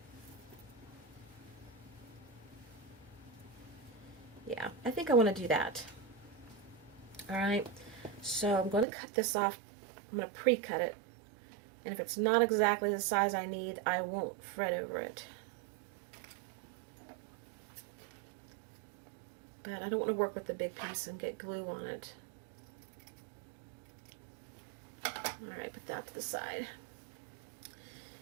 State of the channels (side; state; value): left; drops out; at 8.8 s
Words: Yeah, I think I want to do that. Alright. So I'm going to cut this off. I'm going to pre-cut it. And if it's not exactly the size I need, I won't fret over it. But I don't want to work with the big piece and get glue on it. Alright, put that to the side.